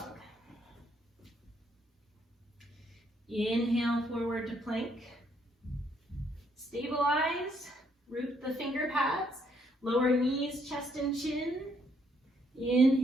Inhale, forward to plank. Stabilize, root the finger pads, lower knees, chest and chin.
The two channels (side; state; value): both; normal; correlation 0.71